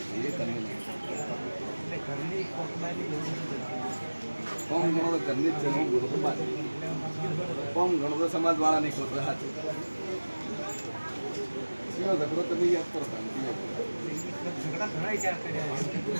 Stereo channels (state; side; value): inverted; both; correlation -1.00